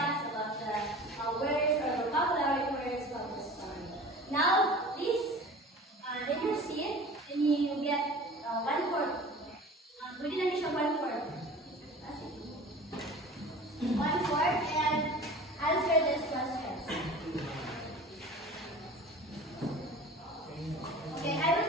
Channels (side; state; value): both; normal; correlation 0.40